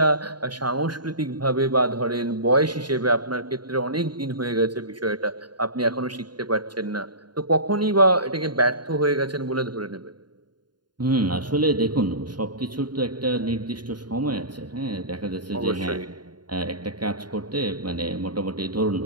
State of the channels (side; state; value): left; late; 0.71 ms